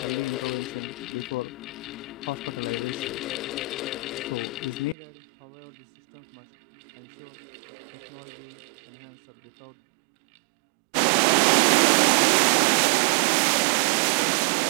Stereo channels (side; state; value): left; drops out; at 5.0 s